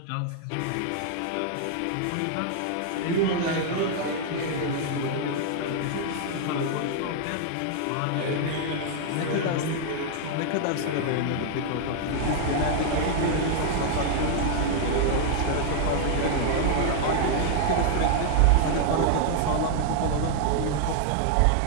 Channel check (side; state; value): both; different; correlation 0.00